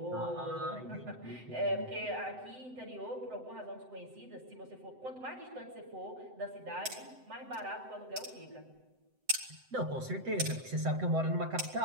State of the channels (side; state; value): left; late; 7.9 ms